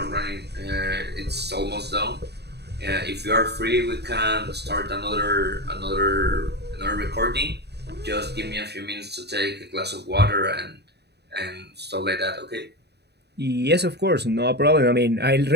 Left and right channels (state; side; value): late; left; 0.48 ms